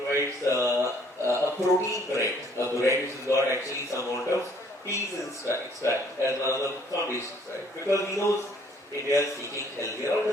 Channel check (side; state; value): both; normal; correlation 0.61